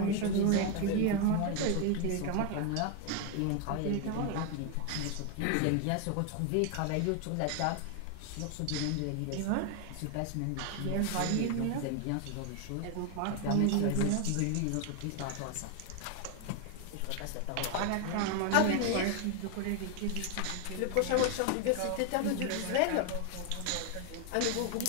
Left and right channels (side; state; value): both; different; correlation 0.01